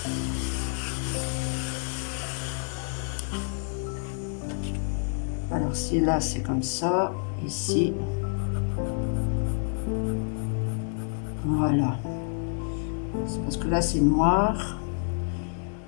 Alors si là c'est comme ça, ici. Voilà. C'est parce que là c'est noir.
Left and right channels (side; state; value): right; silent; 59 dB below the other